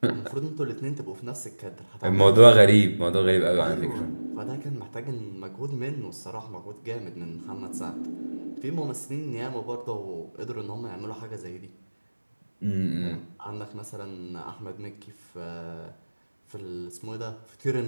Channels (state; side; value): inverted; both; correlation -1.00